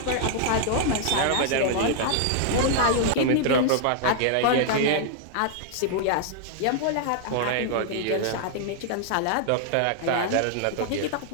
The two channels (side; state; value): both; different; correlation -0.01